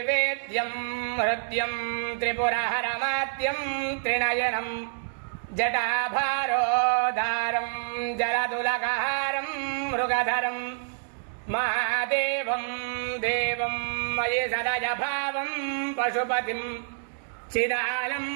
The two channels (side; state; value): left; silent; digital silence